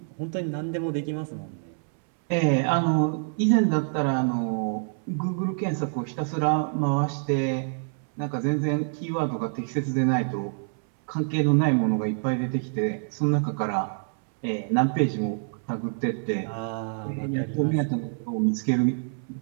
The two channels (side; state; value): left; silent; 61 dB below the other